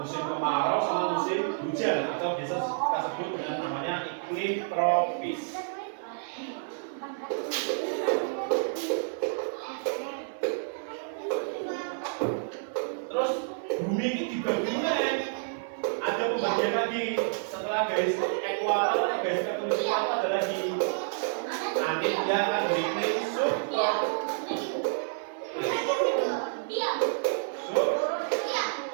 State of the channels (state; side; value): silent; left; 57 dB below the other